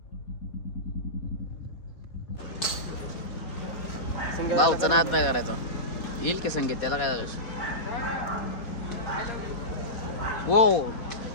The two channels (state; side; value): late; right; 4.2 ms